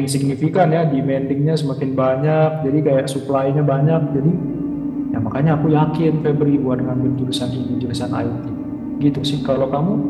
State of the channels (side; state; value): both; identical; correlation 1.00